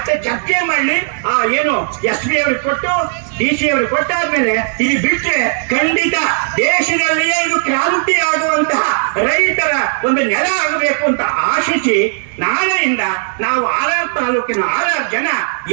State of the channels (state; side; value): silent; left; 64 dB below the other